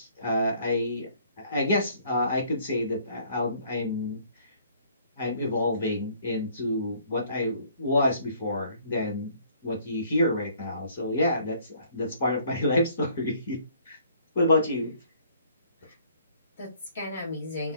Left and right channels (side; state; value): both; inverted; correlation -0.59